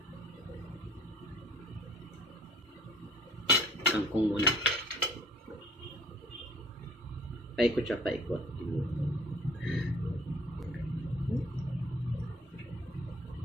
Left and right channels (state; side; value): normal; both; correlation 0.55